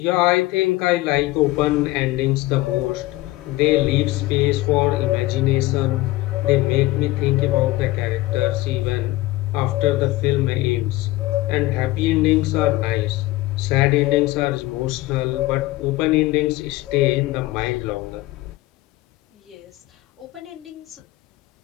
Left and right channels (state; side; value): quieter; right; 18.1 dB